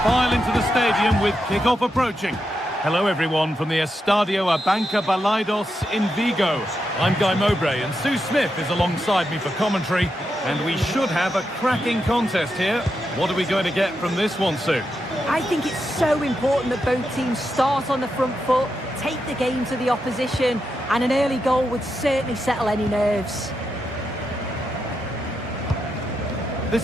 into the stadium with kickoff approaching. Hello everyone from the Estadio Abanca Balaidos in Vigo. I'm Guy Mowbray and Sue Smith is alongside me for commentary. And we should have a cracking contest here. What are we going to get from this one, Sue? I think it's so important that both teams start on the front foot, take the game to the opposition, and an early goal would certainly settle any nerves.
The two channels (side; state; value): both; normal; correlation 0.85